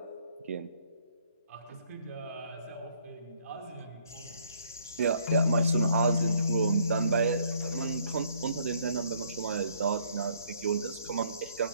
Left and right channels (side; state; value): both; inverted; correlation -0.65